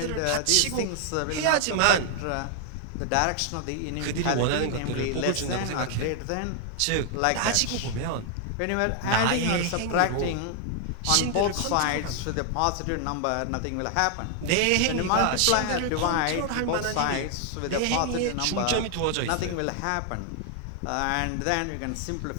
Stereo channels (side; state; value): both; different; correlation 0.00